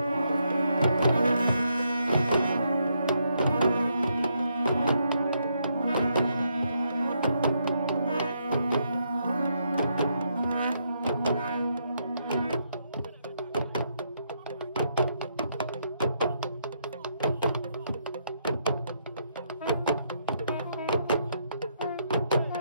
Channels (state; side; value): inverted; both; correlation -0.77